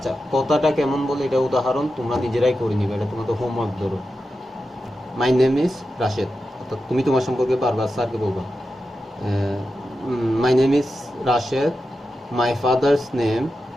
কথাটা কেমন বলে এটা উদাহরণ তোমরা নিজেরাই করে নিবে, এটা তোমাদের হোমওয়ার্ক। ধরো মাই নেম ইজ রাশেদ, অর্থাৎ তুমি তোমার সম্পর্কে বারবার স্যারকে বলবা my name is Rashed, my father's name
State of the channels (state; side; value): normal; both; correlation 0.90